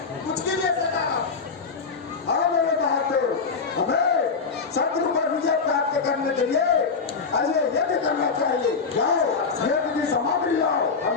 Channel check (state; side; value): quieter; right; 5.1 dB